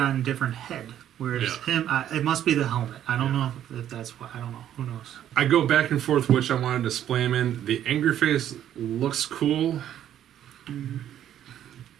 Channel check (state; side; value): quieter; left; 10.9 dB